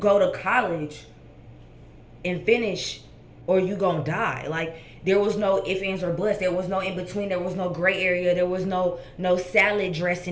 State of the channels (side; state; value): both; identical; correlation 1.00